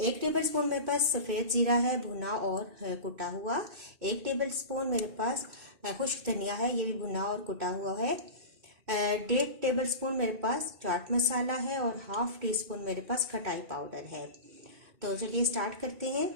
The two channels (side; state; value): left; late; 2.3 ms